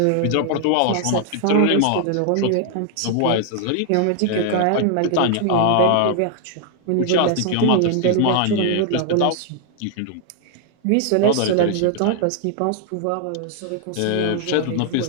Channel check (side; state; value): both; different; correlation 0.00